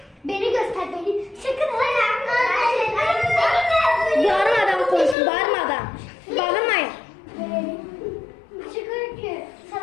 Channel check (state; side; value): drops out; right; at 5.2 s